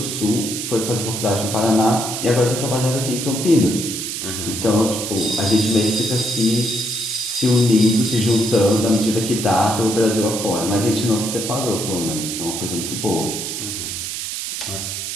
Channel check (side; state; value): right; noise; hiss, 5 dB below the sound